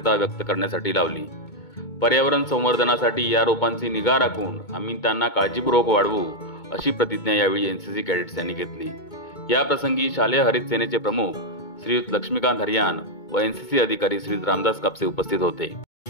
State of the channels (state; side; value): late; right; 2.2 ms